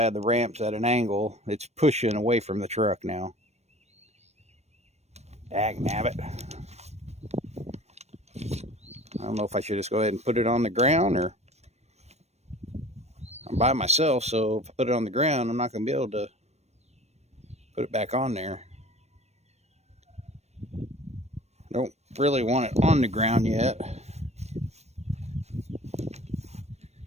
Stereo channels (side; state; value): left; late; 0.31 ms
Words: had the ramps at an angle, it's pushing away from the truck now. Dagnabbit. I don't know if I should just go ahead and put it on the ground, or I'm by myself, so if I put it on the ground, I'm not going to be able to put it back on there. I don't really want it on the ground yet.